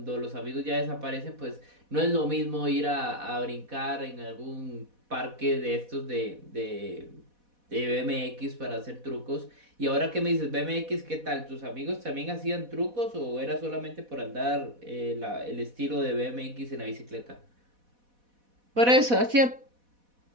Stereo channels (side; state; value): left; late; 4.1 ms